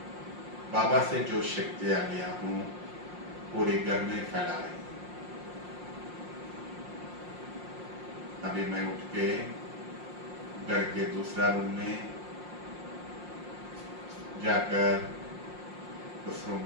बाबा से जो शक्तियां लिया हूं पूरे घर में फैला रही हूं। अभी मैं उठ के घर के दूसरा रूम में जाकर उस रूम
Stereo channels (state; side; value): late; left; 5.6 ms